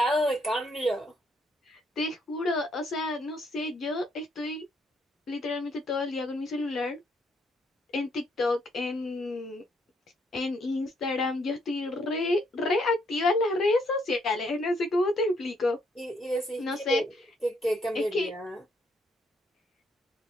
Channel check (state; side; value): normal; both; correlation 0.71